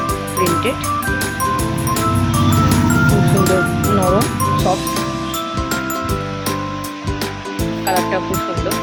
প্রিন্টেড, খুব সুন্দর, নরম, সফট, কালারটা খুব সুন্দর।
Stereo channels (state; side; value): identical; both; correlation 1.00